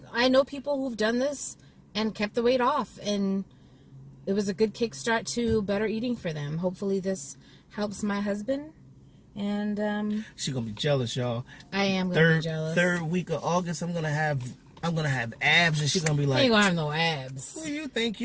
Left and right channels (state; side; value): identical; both; correlation 1.00